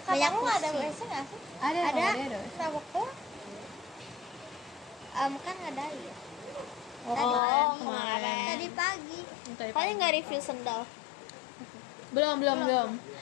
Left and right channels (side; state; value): right; drops out; at 7.4 s